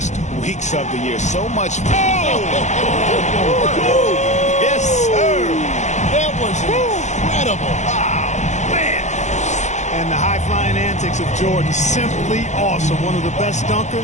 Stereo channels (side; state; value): right; late; 0.34 ms